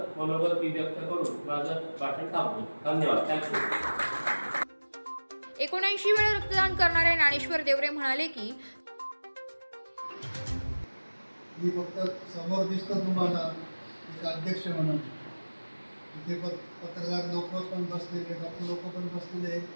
मनोगत मी व्यक्त करून माझं भाषण थांबतो. धन्यवाद. थँक्यू. 79 वेळा रक्तदान करणारे ज्ञानेश्वर देवरे म्हणाले की मी फक्त समोर दिसतो तुम्हाला एक अध्यक्ष म्हणून, इथे पत्रकार लोक पण बसलेले, डॉक्टर लोक पण बसलेले,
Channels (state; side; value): inverted; both; correlation -1.00